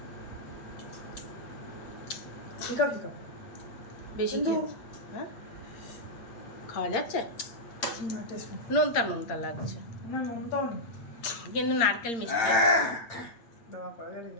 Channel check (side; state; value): right; late; 8.6 ms